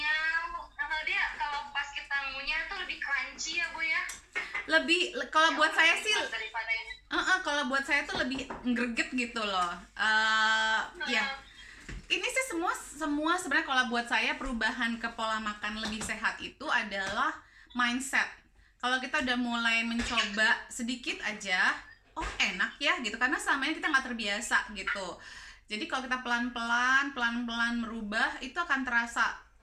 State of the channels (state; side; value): identical; both; correlation 1.00